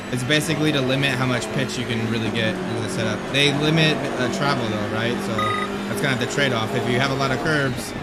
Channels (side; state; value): both; identical; correlation 1.00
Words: It's basically to limit how much pitch you can really get into the setup. They limit travel though, right? So that's kind of the trade-off. If you have a lot of curbs,